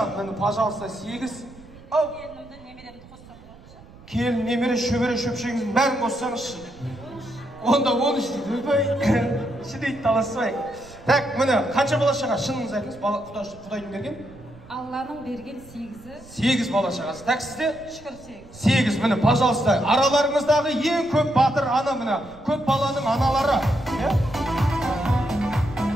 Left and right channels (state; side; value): noise; right; rumble, 21 dB below the sound